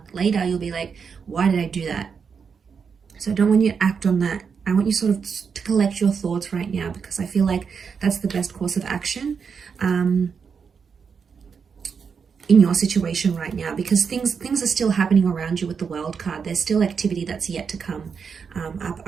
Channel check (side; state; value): left; quieter; 6.1 dB